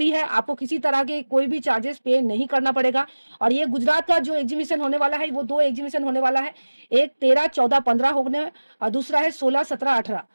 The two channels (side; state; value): both; inverted; correlation -1.00